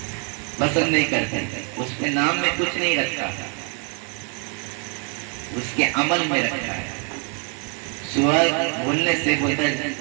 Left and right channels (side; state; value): left; quieter; 37.4 dB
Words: پسند نہیں کرتے. اس کے نام میں کچھ نہیں رکھا، اس کے عمل میں رکھا ہے. سورہ بولنے سے بولتا ہے